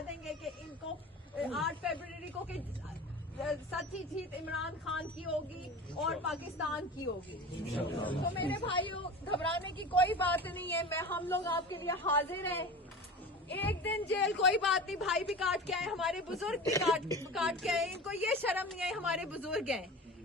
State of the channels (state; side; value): normal; both; correlation 0.34